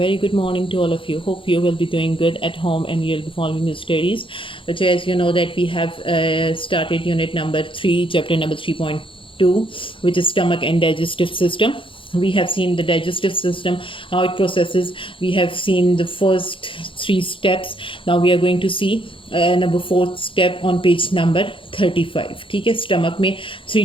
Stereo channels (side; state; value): right; late; 0.25 ms